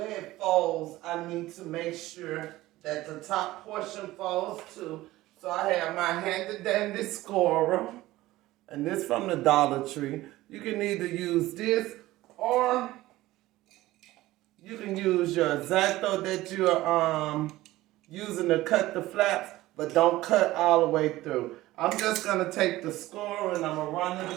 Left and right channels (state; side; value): quieter; left; 17.1 dB